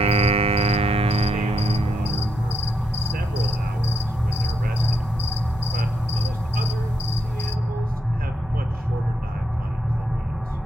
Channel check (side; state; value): both; normal; correlation 0.79